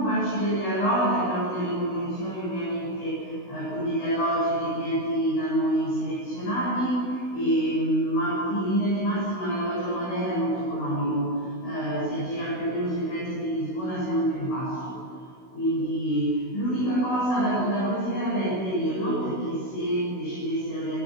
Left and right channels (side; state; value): right; late; 16 ms